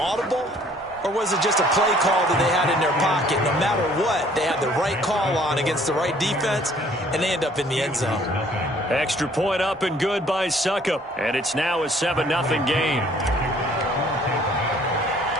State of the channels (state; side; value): normal; both; correlation 0.58